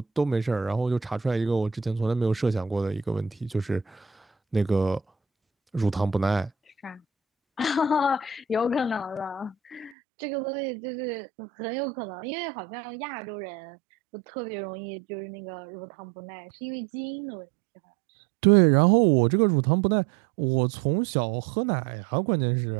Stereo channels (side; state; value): left; drops out; at 10.0 s